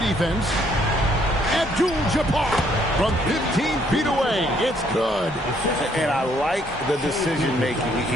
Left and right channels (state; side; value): normal; both; correlation 0.67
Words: Abdul-Jabbar from 15 feet away. It's good. And I like the decision making.